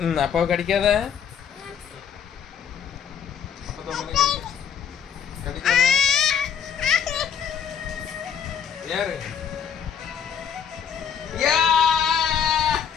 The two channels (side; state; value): right; quieter; 7.9 dB